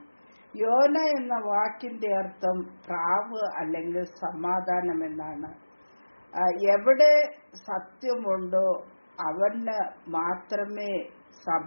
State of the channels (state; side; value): inverted; both; correlation -1.00